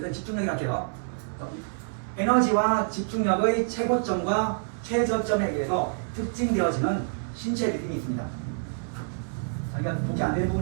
집중력이라 할게요. 에너지와 집중력의 최고점과 최저점에 의해서 특징되어지는 신체 리듬이 있습니다. 자기가 보기 안 되는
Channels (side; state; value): left; silent; 60 dB below the other